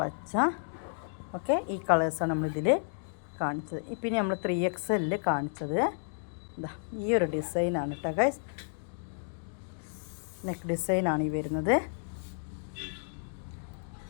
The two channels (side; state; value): right; silent; digital silence